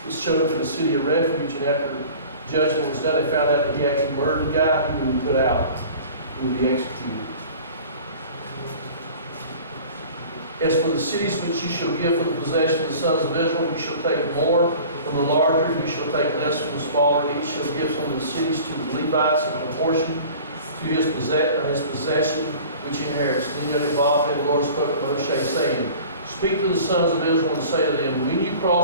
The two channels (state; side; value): inverted; both; correlation -0.43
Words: was chosen to the city of refuge, and after judgment was done, they found out that he actually murdered the guy, he would be put out. He would be executed. As for the cities which you shall give for the possession of the sons of Israel, you shall take more from the larger, you shall take less from the smaller. Each shall give some of the cities to the Levites in proportion to his possession, which he inherits. Then Yodhe-Vafe, the Lord spoke to Moshe, saying, speak to the sons of Israel and say to them, when you